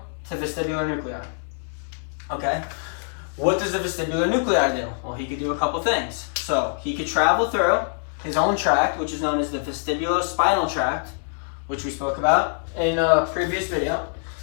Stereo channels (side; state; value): right; silent; digital silence